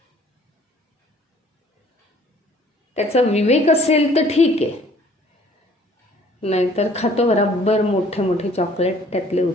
त्याचा विवेक असेल तर ठीक आहे, नाहीतर खातो बराबर मोठे मोठे चॉकलेट त्यातले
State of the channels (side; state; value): both; normal; correlation 0.56